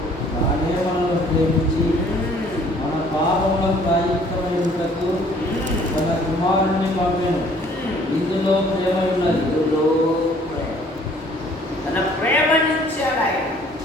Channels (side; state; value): both; normal; correlation 0.57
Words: తానే మనల్ని ప్రేమించి మన పాపములకు ప్రాయశ్చిత్తమైనటకు తన కుమారుని పంపెను. ఇందులో ప్రేమ ఉన్నది. ఇందులో ప్రేమ. తన ప్రేమనిచ్చాడు ఆయన.